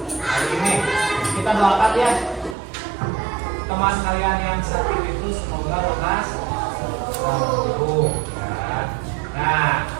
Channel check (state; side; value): drops out; left; at 2.6 s